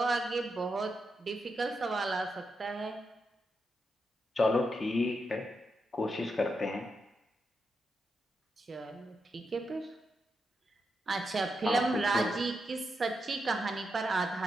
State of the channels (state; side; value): normal; both; correlation 0.85